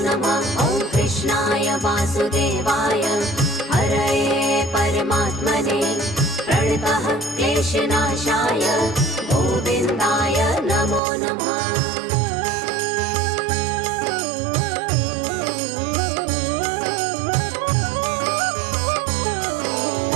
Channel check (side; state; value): left; drops out; at 11.0 s